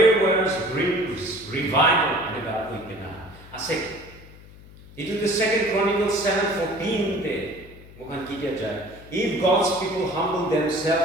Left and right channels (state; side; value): noise; left; hum, 20 dB below the sound